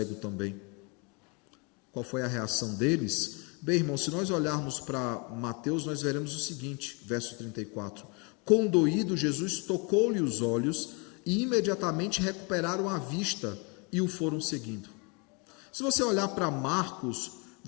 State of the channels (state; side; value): quieter; right; 31.9 dB